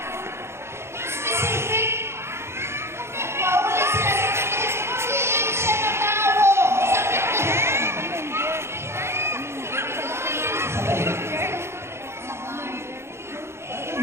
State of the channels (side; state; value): left; late; 0.12 ms